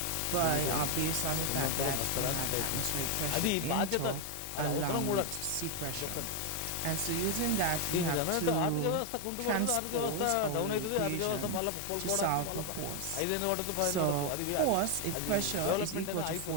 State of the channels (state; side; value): different; both; correlation 0.01